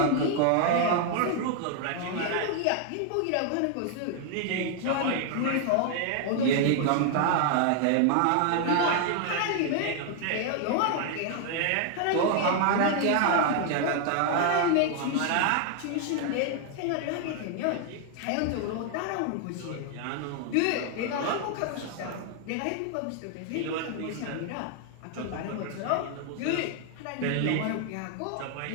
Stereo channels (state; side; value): different; both; correlation 0.00